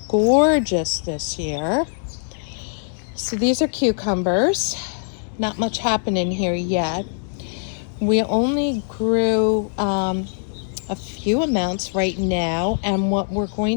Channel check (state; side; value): silent; right; digital silence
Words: gorgeous this year. So these are cucumbers. Not much happening here yet. We only grew a few amounts right now, and what we're